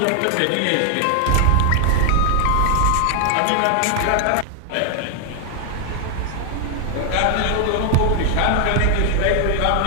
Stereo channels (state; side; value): different; both; correlation 0.00